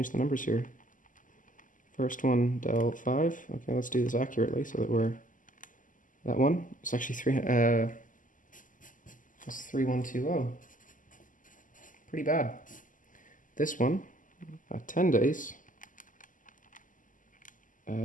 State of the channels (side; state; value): right; late; 0.38 ms